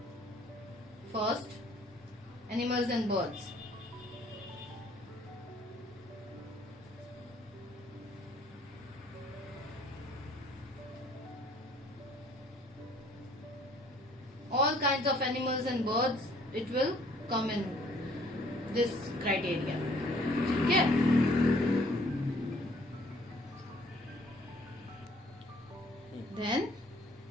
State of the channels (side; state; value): both; normal; correlation 0.59